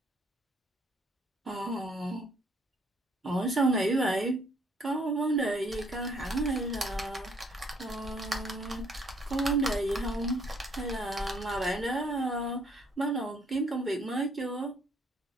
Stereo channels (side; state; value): both; normal; correlation 0.65